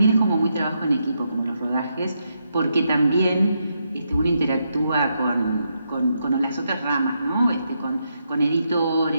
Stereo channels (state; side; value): inverted; both; correlation -0.81